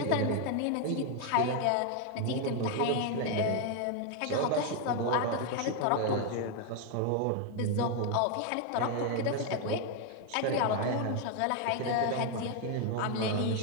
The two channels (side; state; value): both; different; correlation 0.01